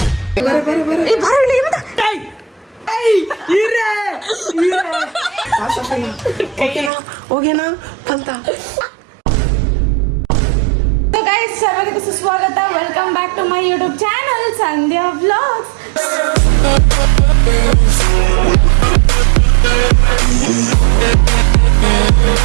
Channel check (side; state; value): left; drops out; at 6.9 s